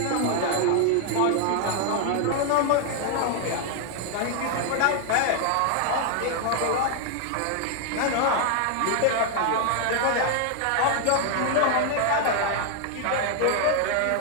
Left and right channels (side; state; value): both; different; correlation 0.00